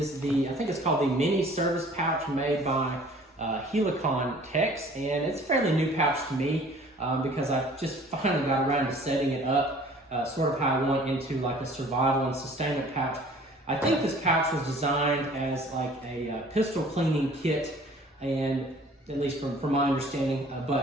I think it's called the mini service pouch made by Helikon Tex, and it's a fairly new pouch to me. Because I just finally got around to setting it up sort of how I want into like a survival and sustainment pouch. I think this pouch was designed as like a pistol cleaning kit, and at least from my understanding,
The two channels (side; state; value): both; normal; correlation 0.51